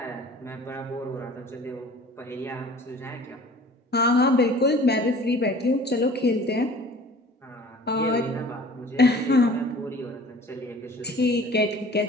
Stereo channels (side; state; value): both; normal; correlation 0.46